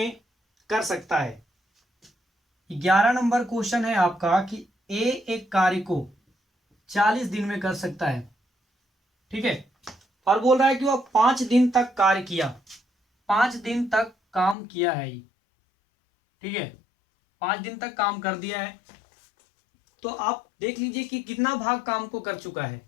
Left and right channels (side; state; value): right; drops out; at 14.6 s